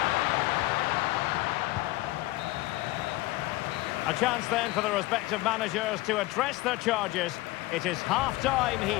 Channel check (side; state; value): right; quieter; 19.2 dB